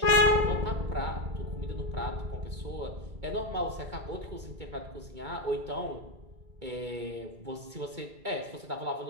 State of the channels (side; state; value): left; late; 2.2 ms